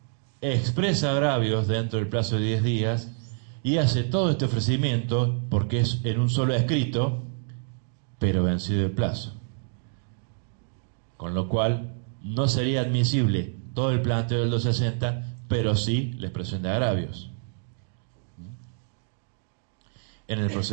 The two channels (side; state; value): left; silent; 60 dB below the other